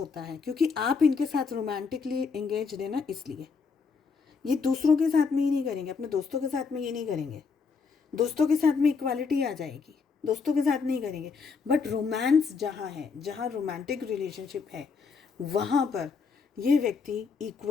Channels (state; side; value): quieter; right; 5.2 dB